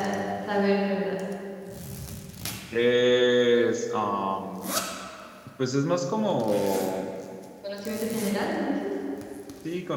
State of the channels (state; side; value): identical; both; correlation 1.00